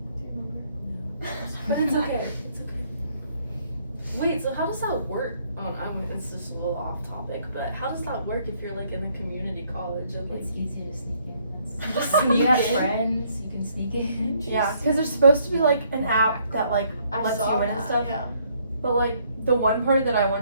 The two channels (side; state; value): both; inverted; correlation -0.67